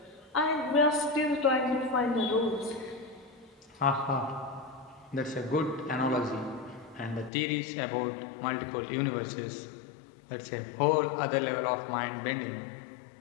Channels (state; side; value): drops out; right; at 7.3 s